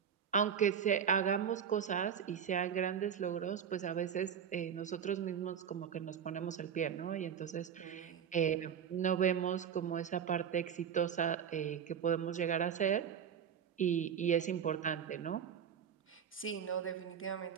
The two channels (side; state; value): left; quieter; 8.0 dB